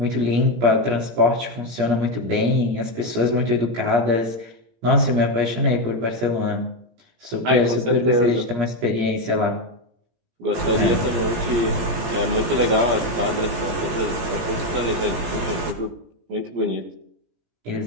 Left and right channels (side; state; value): left; late; 17 ms